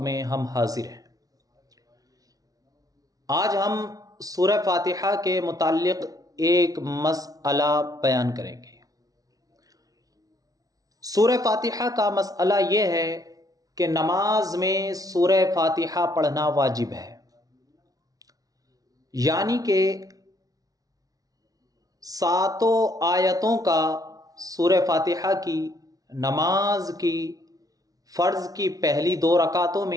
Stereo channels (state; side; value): late; left; 0.18 ms